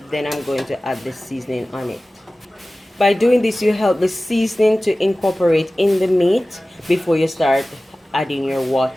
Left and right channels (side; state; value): both; normal; correlation 0.97